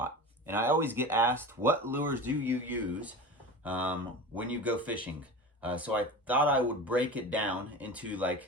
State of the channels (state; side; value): normal; both; correlation 0.31